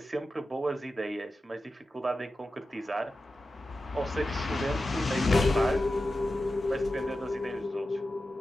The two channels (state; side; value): normal; both; correlation 0.92